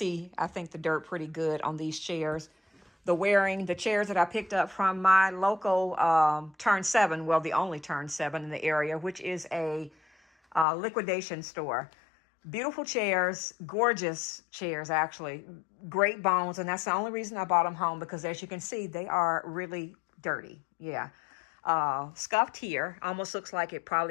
I think, the dirt pretty good on these chairs. The chairs that I picked up from my local Turn 7, well, the only Turn 7 in the area, which is a liquidation store. Beautiful chairs, gorgeous chairs, actually. Great bones. And that's the only reason I bought them home because, as you can see, they are really dirty. Yeah. Scuffed here. Almost looks like it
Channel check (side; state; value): right; drops out; at 10.7 s